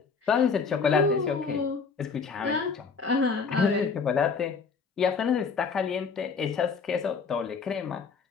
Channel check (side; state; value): right; quieter; 5.3 dB